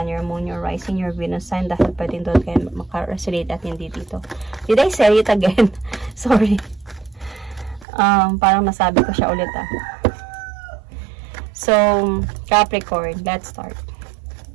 your Moon, your Rising, your Venus sign, dahil pwedeng doon kayo maka-resonate at hindi dito. Did I say it again? Sorry. Parang nasabi ko siya ulit So, Capricorn, let's start.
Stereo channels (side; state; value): left; drops out; at 7.9 s